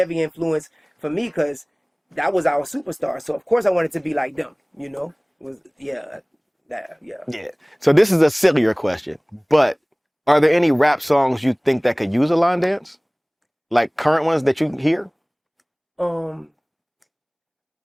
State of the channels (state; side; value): identical; both; correlation 1.00